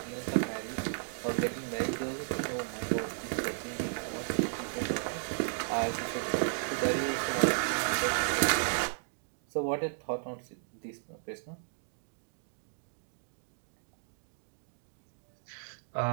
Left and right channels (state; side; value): silent; left; digital silence